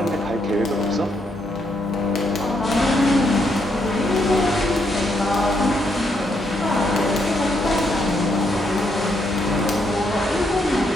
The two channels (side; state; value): both; normal; correlation 0.76